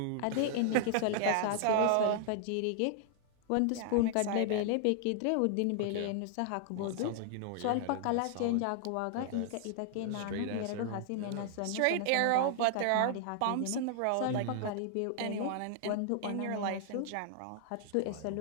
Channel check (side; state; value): both; different; correlation 0.00